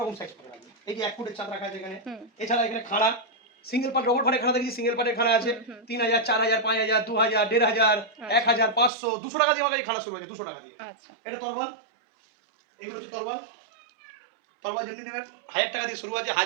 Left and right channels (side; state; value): left; drops out; at 8.9 s